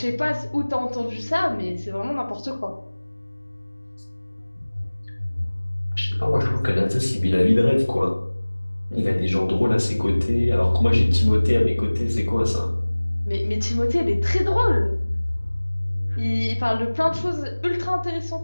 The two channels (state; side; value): inverted; both; correlation -1.00